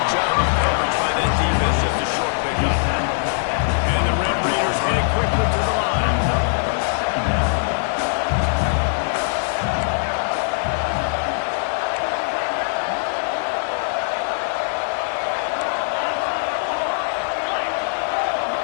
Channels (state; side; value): silent; right; digital silence